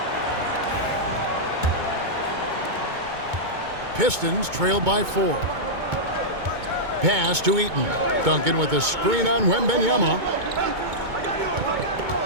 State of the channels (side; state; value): left; late; 2.2 ms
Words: Pistons trail by 4. Pass to Eaton. Duncan with a screen on Wembanyama.